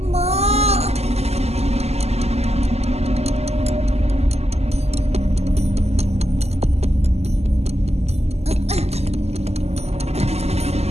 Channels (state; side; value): late; left; 0.30 ms